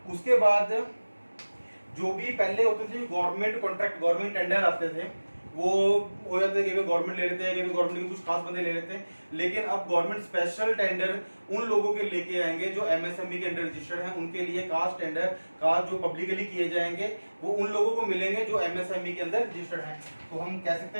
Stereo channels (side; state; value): both; inverted; correlation -1.00